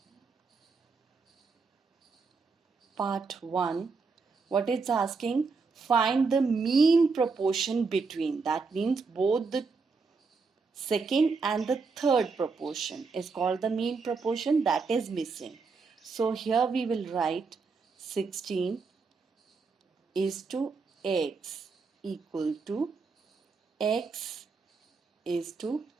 Part 1. What it's asking? Find the mean proportion between. That means both the second and the third proportion is called the mean proportion, that is missing. So here we will write 16 is to x equal to x is to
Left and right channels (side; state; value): left; quieter; 4.6 dB